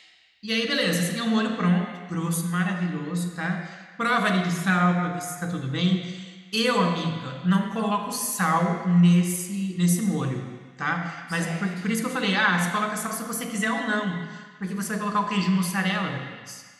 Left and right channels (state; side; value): identical; both; correlation 1.00